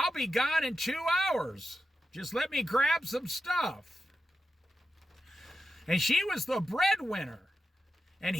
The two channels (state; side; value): normal; both; correlation 0.89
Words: be gone in 2 hours. Just let me grab some stuff. And she was the breadwinner. And